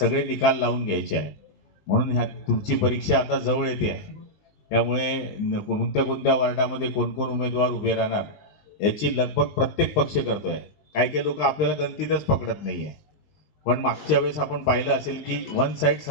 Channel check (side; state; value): right; late; 20 ms